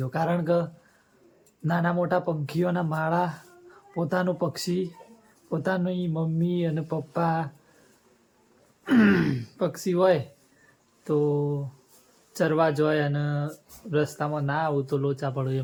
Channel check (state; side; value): identical; both; correlation 1.00